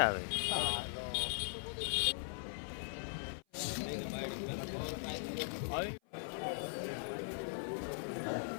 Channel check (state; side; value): silent; right; 51 dB below the other